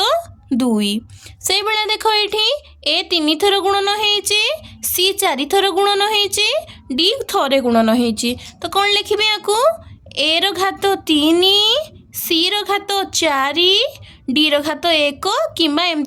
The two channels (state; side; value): identical; both; correlation 1.00